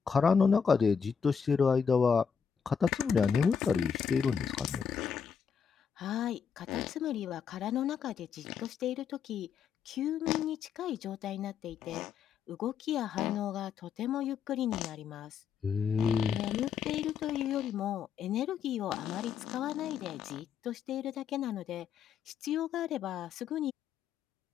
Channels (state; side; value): quieter; right; 6.8 dB